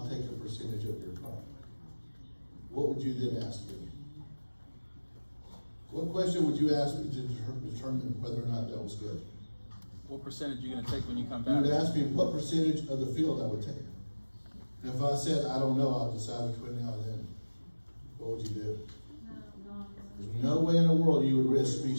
take a percentage of your crop. What would you then ask me? What question would you ask me to determine whether or not that was good? What percentage are you going to take when you come You back? would ask me what percentage of the field I would take. And if I said, I don't know, I'll decide between now and then. What would you do? There's no way in the world you would risk me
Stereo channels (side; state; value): both; inverted; correlation -1.00